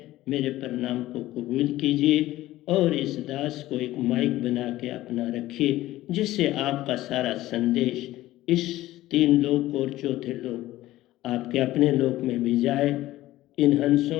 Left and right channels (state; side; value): quieter; right; 16.0 dB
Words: मेरे प्रणाम को कबूल कीजिए और इस दास को एक माइक बना के अपना रखिए, जिससे आपका सारा संदेश इस 3 लोक और चौथे लोक आपके अपने लोक में भी जाए। इन